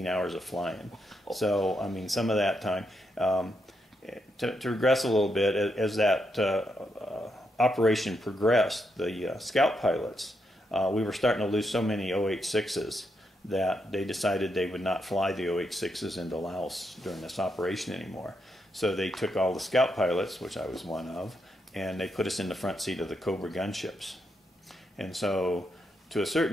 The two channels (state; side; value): normal; both; correlation 0.81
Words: hours of flying. So I mean, some of that time. To regress a little bit, as that operation progressed, the scout pilots. We were starting to lose so many OH-6s that they decided they would not fly the OH-6s into Laos during this operation anymore. So they took all the scout pilots, which I was one of, and they put us in the front seat of the Cobra gunships. And so to a